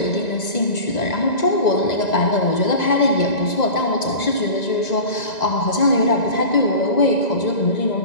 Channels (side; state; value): right; late; 2.0 ms